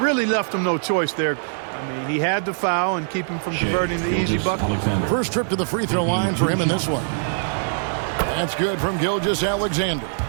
really left him no choice there. I mean, he had to foul and keep him from converting the easy bucket. First trip to the free throw line for him in this one. That's good from Gilgeous-Alexander.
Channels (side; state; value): left; silent; digital silence